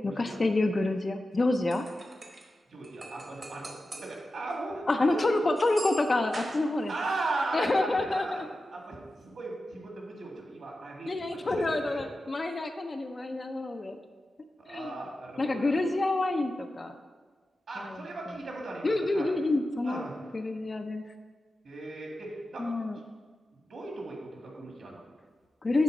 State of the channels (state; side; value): normal; both; correlation 0.92